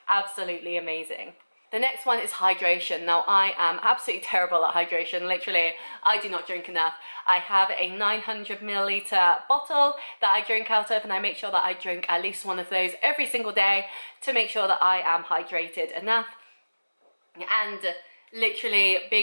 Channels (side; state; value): both; inverted; correlation -1.00